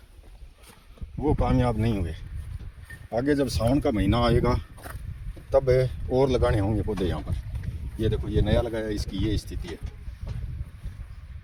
वो कामयाब नहीं हुए। आगे जब सावन का महीना आएगा तब और लगाने होंगे पौधे यहाँ पर। ये देखो ये नया लगाया, इसकी ये स्थिति है।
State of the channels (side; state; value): both; identical; correlation 1.00